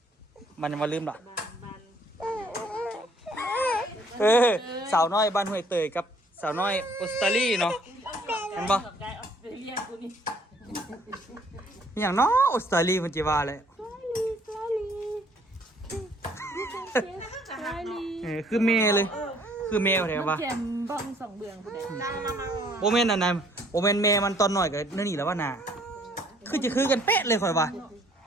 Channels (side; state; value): both; normal; correlation 0.61